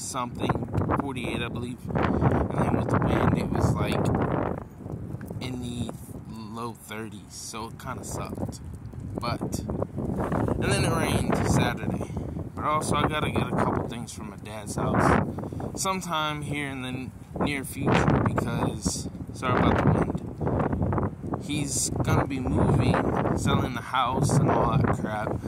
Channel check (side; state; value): both; identical; correlation 1.00